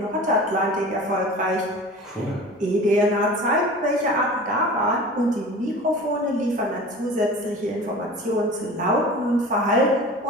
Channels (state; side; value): normal; both; correlation 0.38